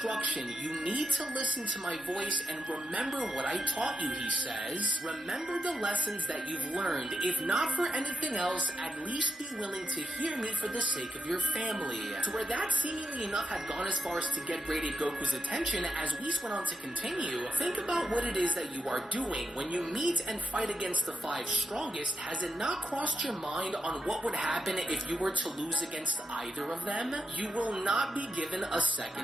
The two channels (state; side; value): normal; both; correlation 0.82